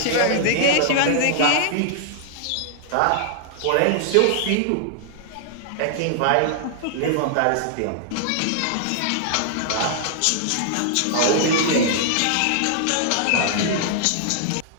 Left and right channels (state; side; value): different; both; correlation -0.01